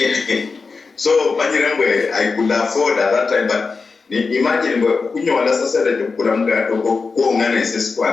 so manyerengwe I could afford at that time but imagine kunyola sasa de kula mgati ko ngane sesi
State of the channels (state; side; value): quieter; right; 4.5 dB